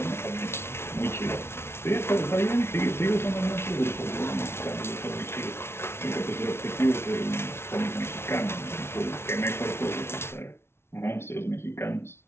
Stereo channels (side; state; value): right; late; 0.12 ms